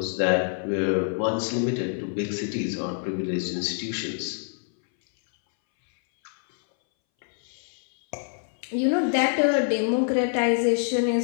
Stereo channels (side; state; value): right; silent; 61 dB below the other